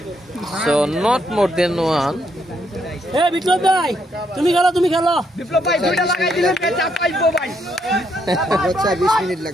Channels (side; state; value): both; normal; correlation 0.75